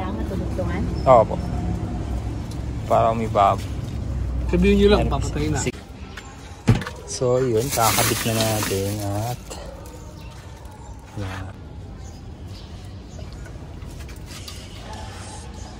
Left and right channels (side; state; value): both; identical; correlation 1.00